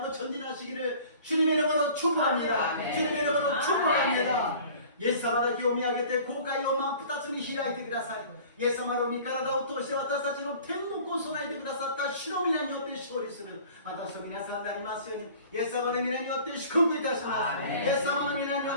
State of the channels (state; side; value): inverted; both; correlation -0.46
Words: 전진하시기를 주님의 이름으로 축복합니다. 아멘. 주님의 이름으로 축복합니다. イエス様だけを見上げて後悔を真っ二つに開いてください。イエス様の御体を通して私たちの天国を備えてくださった主の皆によって勝利する私と皆さんになりますようにイエス様の皆によって祝福いたします。イエス様の皆によ